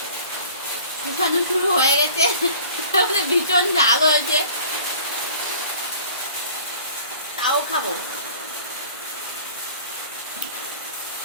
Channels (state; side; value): inverted; both; correlation -0.47